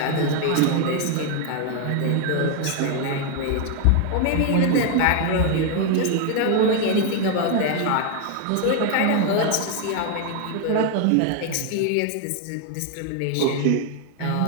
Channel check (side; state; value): both; different; correlation 0.01